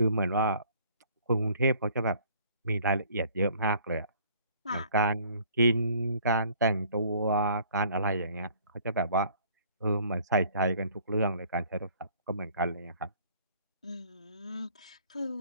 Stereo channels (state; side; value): inverted; both; correlation -0.57